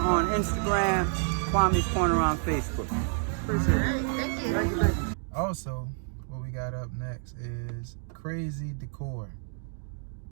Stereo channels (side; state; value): left; silent; 56 dB below the other